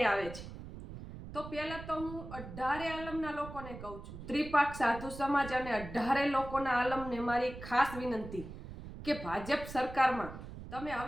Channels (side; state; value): right; noise; rumble, 12 dB below the sound